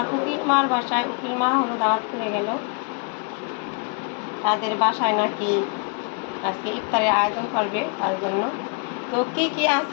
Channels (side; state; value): right; quieter; 35.9 dB